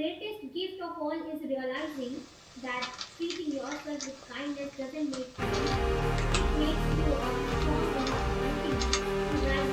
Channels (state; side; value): identical; both; correlation 1.00